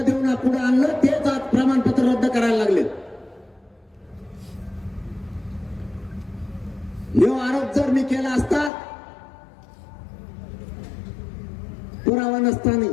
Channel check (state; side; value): drops out; right; at 8.7 s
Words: देऊन पुढे आणलं तेच आज प्रमाणपत्र रद्द करायला लागले. हा आरोप जर मी केला असता पुरावा नसताना